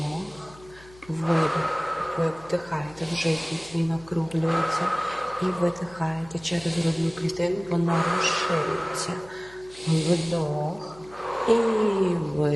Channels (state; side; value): noise; left; hum, 23 dB below the sound